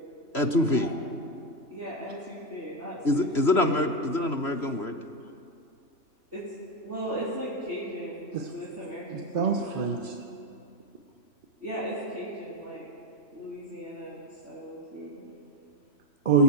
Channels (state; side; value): late; right; 3.1 ms